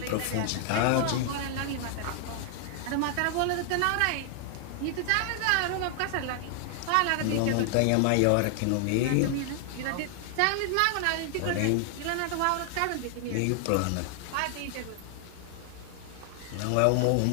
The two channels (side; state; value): both; different; correlation 0.00